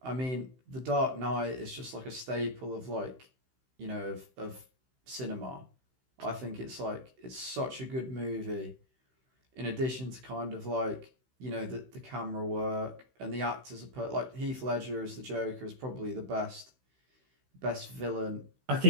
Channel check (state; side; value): late; left; 16 ms